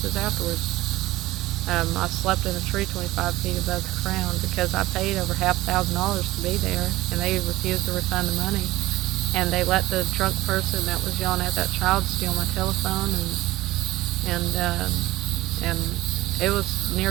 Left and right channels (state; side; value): quieter; left; 17.4 dB